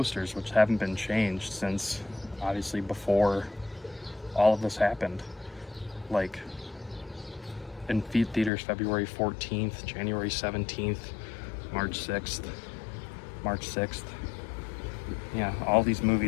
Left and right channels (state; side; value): drops out; right; at 8.5 s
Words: which haven't been changed since obviously before all of this happened. Like in theaters February 14th, January 17th, March 6th, March 6th. Yeah, all these